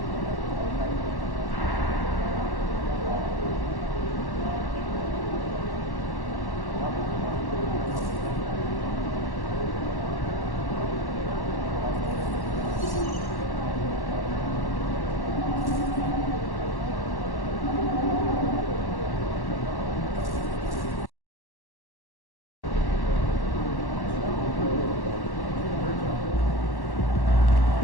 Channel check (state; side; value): late; right; 1.1 ms